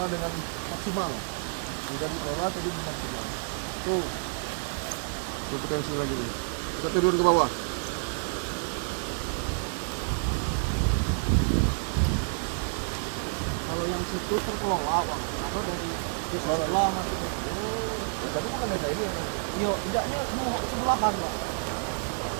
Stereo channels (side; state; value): left; silent; 58 dB below the other